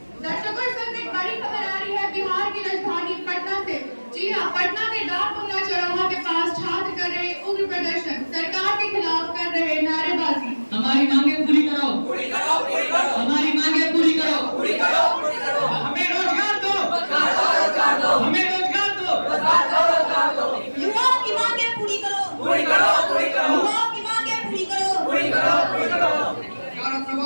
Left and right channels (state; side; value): inverted; both; correlation -1.00